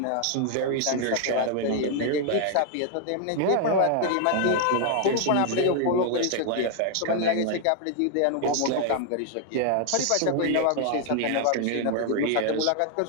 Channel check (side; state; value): both; different; correlation 0.00